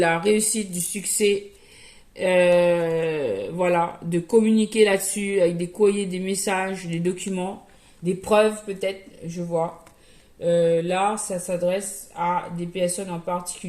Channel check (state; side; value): identical; both; correlation 1.00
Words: réussite, du succès, voilà, de communiquer là-dessus avec des courriers, des messages, des documents, des preuves peut-être, je vois. Là, ça s'adresse à des personnes en